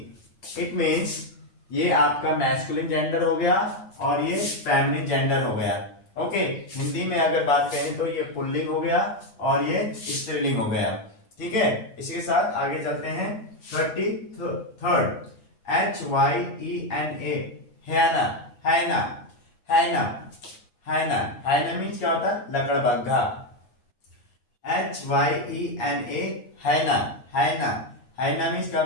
इट मीन्स ये आपका मैस्कुलिन जेंडर हो गया और ये फेमिनिन जेंडर हो गया। ओके, हिंदी में अगर बात करें तो ये पुल्लिंग हो गया और ये स्त्रीलिंग हो गया। ठीक है, इसी के साथ आगे चलते हैं। 33rd HYENA, हैना, हैना, हैना, हैना। हैना मीन्स क्या होता है? लकड़बग्घा। HYENA, हैना, हैना। हैना मीन्स क्या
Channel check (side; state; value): right; late; 9.6 ms